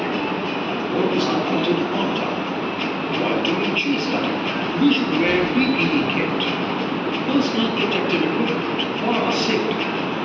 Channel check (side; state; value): both; identical; correlation 1.00